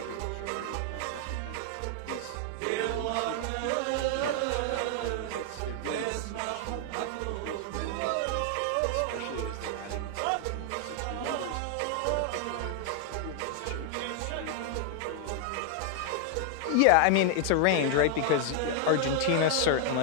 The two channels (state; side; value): different; both; correlation 0.00